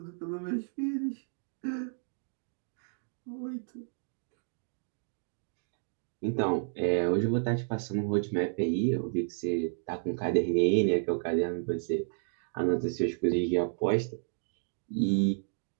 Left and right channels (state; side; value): silent; left; digital silence